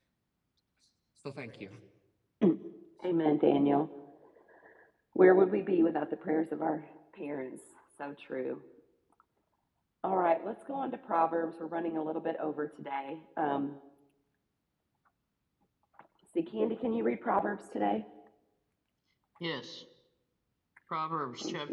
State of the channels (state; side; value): identical; both; correlation 1.00